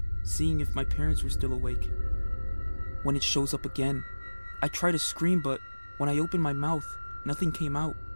seeing if my parents were still awake. When it shows up again, I try to scream, but when I open my mouth, nothing came out,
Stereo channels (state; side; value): inverted; both; correlation -1.00